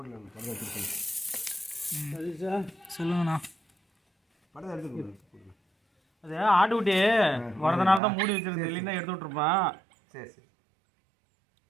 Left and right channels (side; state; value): left; drops out; at 8.0 s